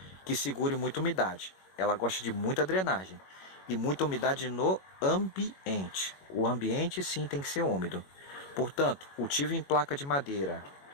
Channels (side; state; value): right; late; 21 ms